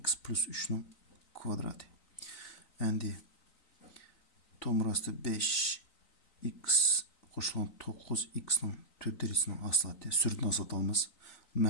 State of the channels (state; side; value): late; right; 3.9 ms